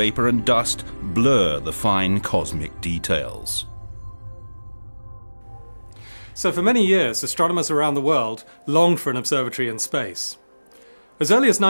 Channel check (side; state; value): both; inverted; correlation -1.00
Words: and dust blur the fine cosmic details. So for many years, astronomers around the world longed for an observatory in space. As early as